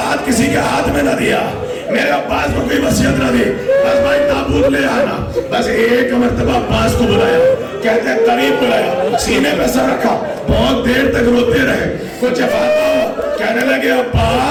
ہاتھ کسی کے ہاتھ میں نہ دیا, میرے عباس کو کوئی وصیت نہ دی. بس بھائی تابوت لے آنا. بس ایک مرتبہ عباس کو بلایا, کہتے ہیں قریب بلایا, سینے پہ سر رکھا, بہت دیر تک روتے رہے. کچھ افاقہ ہوا, کہنے لگے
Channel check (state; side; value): identical; both; correlation 1.00